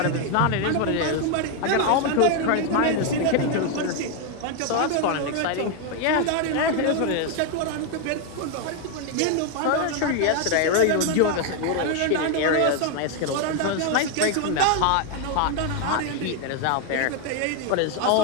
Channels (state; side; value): different; both; correlation 0.01